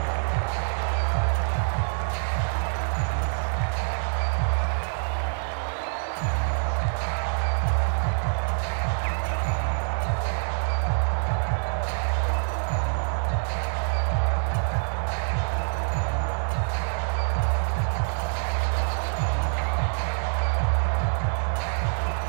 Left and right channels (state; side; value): silent; left; digital silence